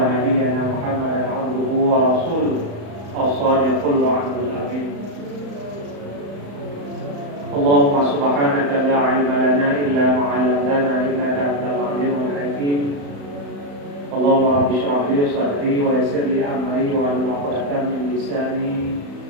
nabiyyana Muhammadan 'abduhu wa rasuluhu as-sadiqul wa'dul amin. Allahumma subhanaka la ilma lana illa ma 'allamtana innaka antal 'alimul hakim. Allahumma rabbi shrah li sadri wa yassir li amri wa hlul 'uqdatam min lisani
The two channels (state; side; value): late; left; 35 ms